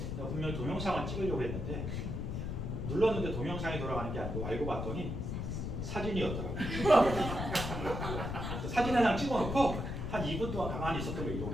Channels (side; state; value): left; noise; rumble, 3 dB below the sound